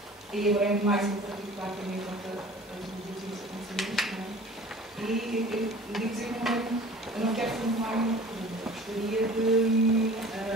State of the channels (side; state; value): both; normal; correlation 0.44